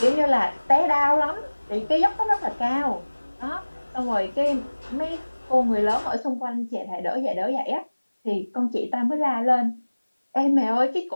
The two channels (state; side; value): inverted; both; correlation -1.00